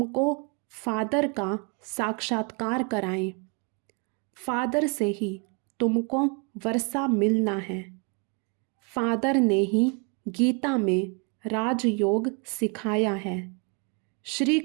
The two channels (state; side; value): quieter; left; 34.0 dB